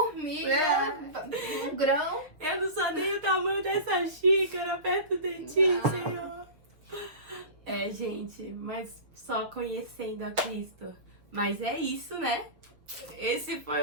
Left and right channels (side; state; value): left; late; 6.7 ms